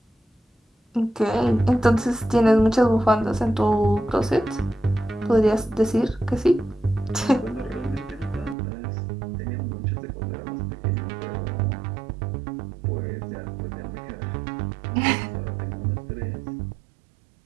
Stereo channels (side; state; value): left; drops out; at 8.6 s